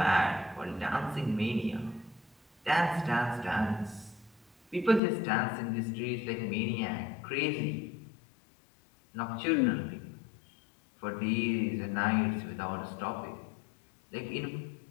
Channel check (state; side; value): drops out; right; at 5.0 s